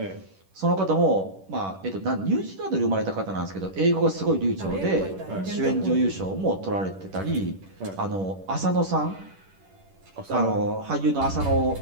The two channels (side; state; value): left; late; 10 ms